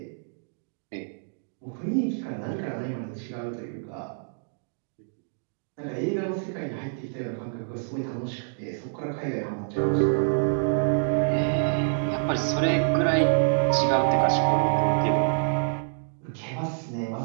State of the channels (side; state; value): left; silent; digital silence